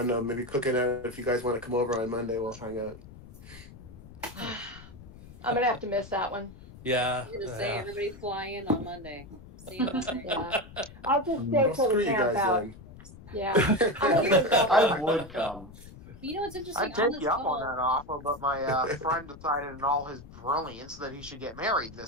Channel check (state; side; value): noise; left; rumble, 17 dB below the sound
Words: know, maybe cooking out. If you guys want to come over on Monday, we'll hang out. I'm gonna have to miss that one. Yeah. You're gonna say everybody fly in on Monday. See you Monday. Yeah. I'll just stay Well, till screw we you camp guys out. then. Yeah. I would come. But you know what's interesting? I'd On take this you up call, on that offer, but my friend decided in all his brilliance that he should get married